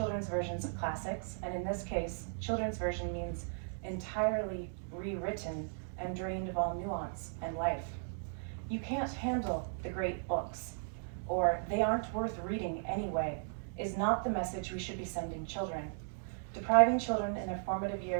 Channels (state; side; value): silent; left; digital silence